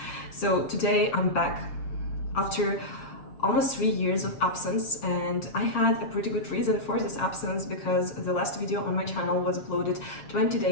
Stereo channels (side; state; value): right; late; 7.5 ms